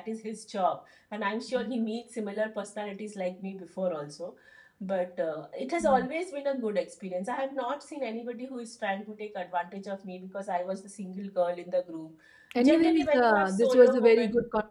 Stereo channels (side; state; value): both; identical; correlation 1.00